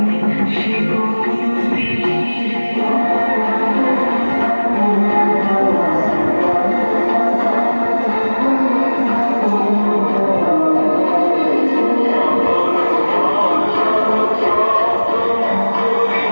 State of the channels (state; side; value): inverted; both; correlation -1.00